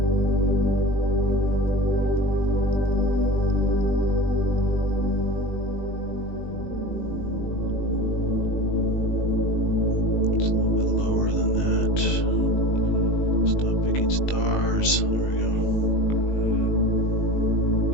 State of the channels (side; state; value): right; late; 20 ms